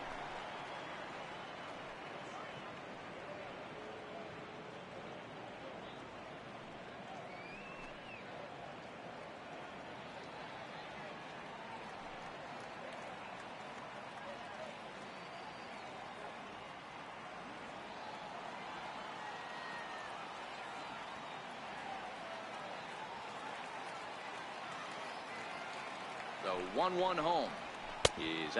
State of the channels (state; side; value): identical; both; correlation 1.00